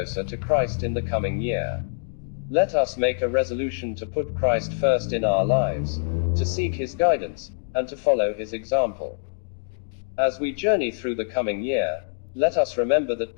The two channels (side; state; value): right; silent; digital silence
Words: to Christ in the coming year. Let us make a resolution to put Christ first in our lives, to seek His guidance, and to follow His example. As we journey through the coming year, let us remember that